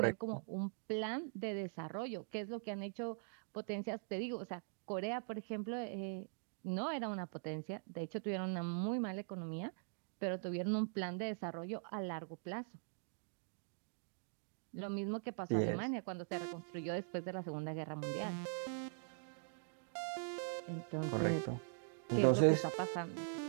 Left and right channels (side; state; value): left; silent; digital silence